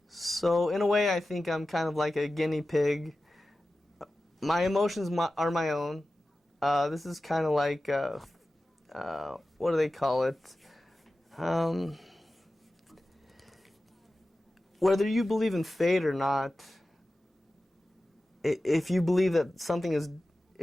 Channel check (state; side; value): normal; both; correlation 0.94